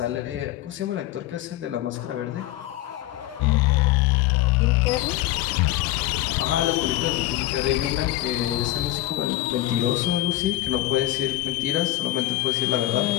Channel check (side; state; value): right; quieter; 15.2 dB